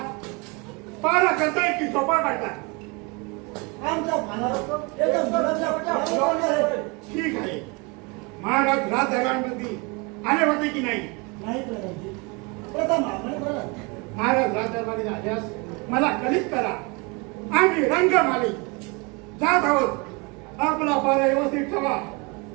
पारा करताय की झोपा काढताय. आमचा भानावर एकदम मुलाच्या फुलावर आहे. ठीक आहे. महाराज राजदरबारामध्ये आले होते की नाही. नाही करायची प्रथम आपण करा. महाराज राजदरबारी आल्यास मला कलित करा. आम्ही रंगमाली जात आहोत. आपला पारा व्यवस्थित ठेवा.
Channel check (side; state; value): left; quieter; 29.2 dB